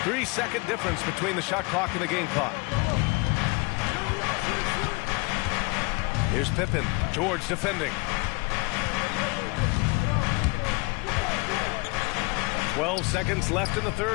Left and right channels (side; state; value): right; quieter; 28.0 dB